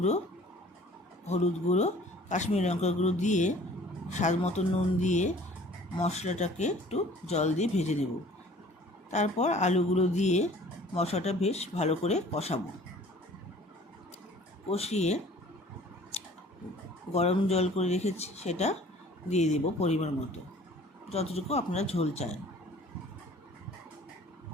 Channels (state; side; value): normal; both; correlation 0.50